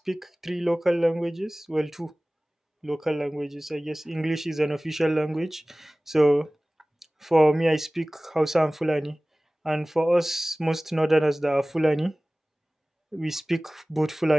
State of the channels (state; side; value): normal; both; correlation 0.98